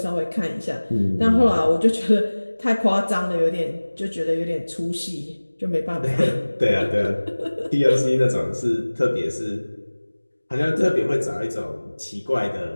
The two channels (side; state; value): both; inverted; correlation -1.00